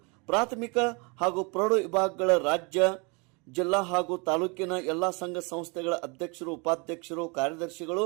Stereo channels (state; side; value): quieter; left; 30.9 dB